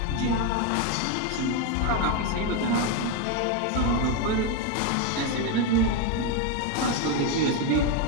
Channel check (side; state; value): both; different; correlation 0.02